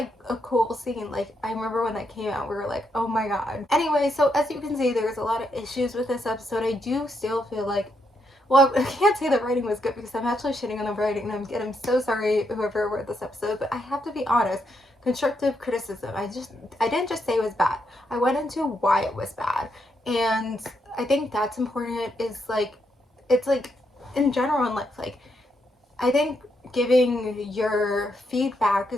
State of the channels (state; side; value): normal; both; correlation 0.79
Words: a cool scene. Like, I remember when that came out, we were like, oh my god. Anyway, so as you can see, there's a lot of issues with this episode. I do still feel like, well, I can't say the writing was good because I'm actually shitting on the writing, and I'm so sorry whoever wrote this episode, but I have to be honest. Constructive criticism. I didn't just say it was bad. I went into why it was bad. And I think that's important, is like, it's like in general in life, like, I think giving your feedback